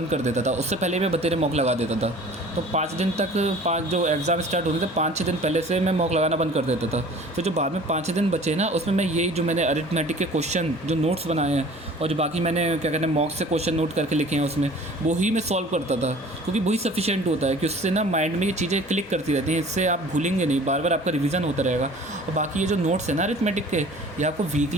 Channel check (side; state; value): both; normal; correlation 0.47